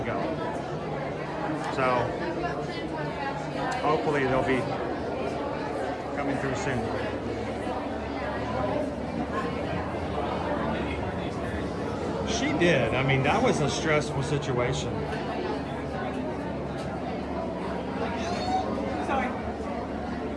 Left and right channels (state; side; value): identical; both; correlation 1.00